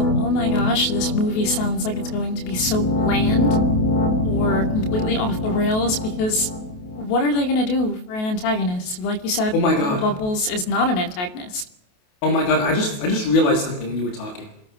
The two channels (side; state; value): right; late; 28 ms